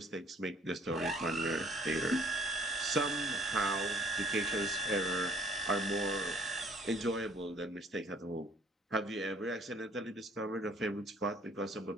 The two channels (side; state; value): both; normal; correlation 0.57